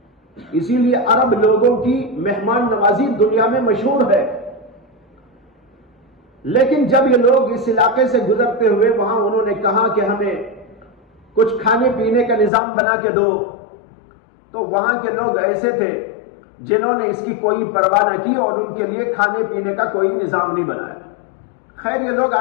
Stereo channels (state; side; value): drops out; right; at 12.5 s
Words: اسی لیے عرب لوگوں کی مہمان نوازی دنیا میں مشہور ہے۔ لیکن جب یہ لوگ اس علاقے سے گزرتے ہوئے وہاں انہوں نے کہا کہ ہمیں کچھ کھانے پینے کا نظام بنا کے دو، تو وہاں کے لوگ ایسے تھے جنہوں نے اس کی کوئی پرواہ نہ کی اور ان کے لیے کھانے پینے کا کوئی نظام نہیں بنایا۔ خیر یہ لوگ